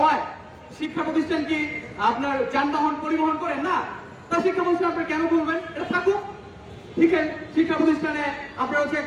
শিক্ষা প্রতিষ্ঠান কি আপনার যানবাহন পরিবহন করেন না? তা শিক্ষা প্রতিষ্ঠান আপনি কেন বলবেন? এটা থাকুক, ঠিক আছে। শিক্ষা প্রতিষ্ঠানে আপনার হচ্ছে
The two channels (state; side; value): identical; both; correlation 1.00